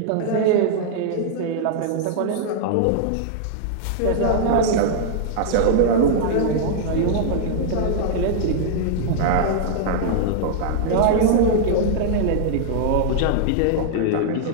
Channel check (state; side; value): different; both; correlation -0.01